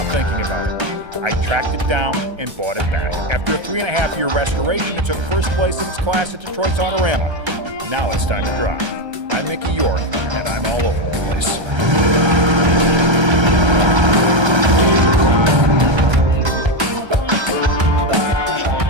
thinking about it. I tracked it down and bought it back. After a 3.5-year restoration, it took first place in its class at Detroit's Autorama. Now it's time to drive. I'm Mickey York, and I'm all over the place.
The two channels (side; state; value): left; late; 1.3 ms